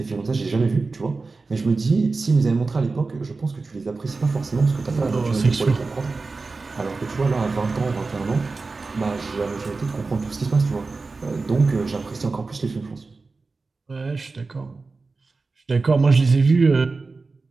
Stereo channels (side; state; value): left; quieter; 3.9 dB